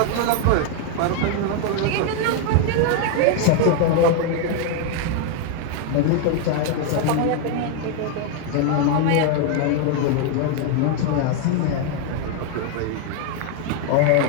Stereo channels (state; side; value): different; both; correlation 0.00